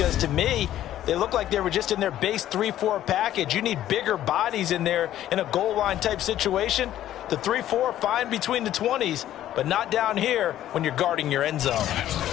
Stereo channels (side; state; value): right; quieter; 12.5 dB